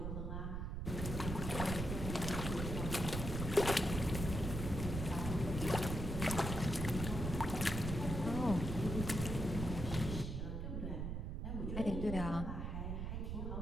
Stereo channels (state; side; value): noise; right; rumble, 3 dB below the sound